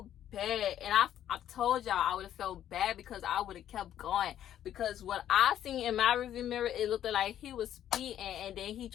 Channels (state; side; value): quieter; right; 11.0 dB